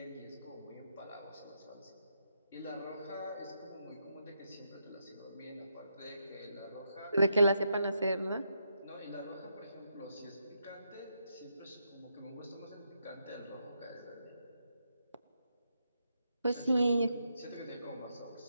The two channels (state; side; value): inverted; both; correlation -0.81